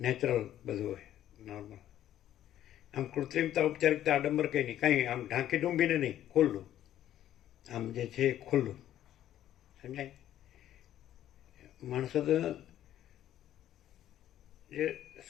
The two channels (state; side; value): quieter; right; 12.0 dB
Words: બધું હોય, નોર્મલ. આમ કૃત્રિમતા, ઔપચારિકતા, આડંબર કંઈ નહીં, કાંઈ આમ ઢાંકી ડૂંબીને નહીં, ખુલ્લું. આમ જે છે એ ખુલ્લું, સમજાય. માણસો તો જે